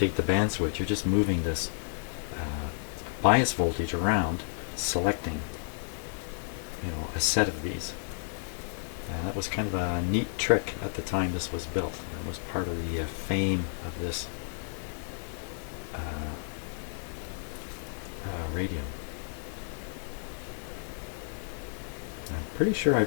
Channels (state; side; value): silent; right; digital silence